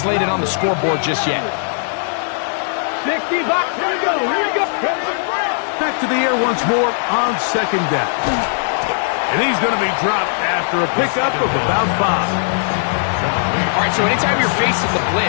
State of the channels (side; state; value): right; silent; digital silence